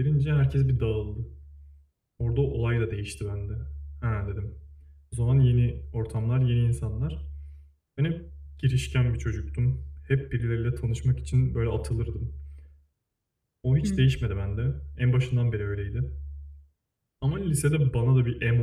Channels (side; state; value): both; identical; correlation 1.00